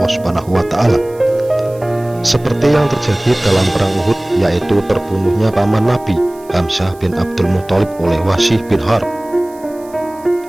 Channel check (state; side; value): noise; right; hiss, 26 dB below the sound